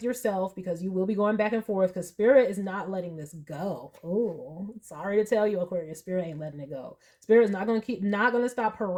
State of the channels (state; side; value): identical; both; correlation 1.00